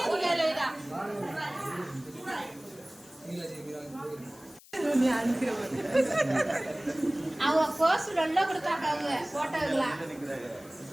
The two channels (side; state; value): left; noise; hiss, 23 dB below the sound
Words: அவங்க கோசு நல்லா கொடுத்தாங்க. அவங்க போட்டோங்களா